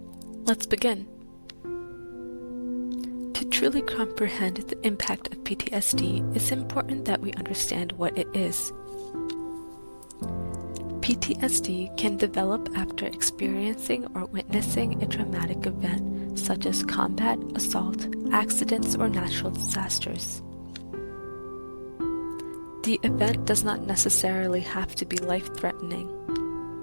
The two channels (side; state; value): both; inverted; correlation -1.00